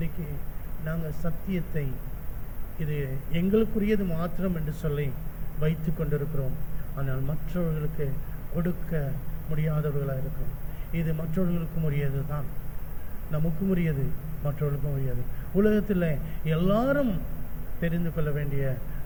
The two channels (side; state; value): both; identical; correlation 1.00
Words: நாங்கள் சத்தியத்தை இது எங்களுக்குரியது மாத்திரம் என்று சொல்லி வைத்து கொண்டிருக்கிறோம். ஆனால் மற்றவர்களுக்கு கொடுக்க முடியாதவர்களாக இருக்கிறோம். இது மற்றவர்களுக்கும் உரியது தான், நமக்கும் உரியது, மற்றவர்களுக்கும் உரியது. உலகத்தில் எல்லாரும் தெரிந்து கொள்ள வேண்டிய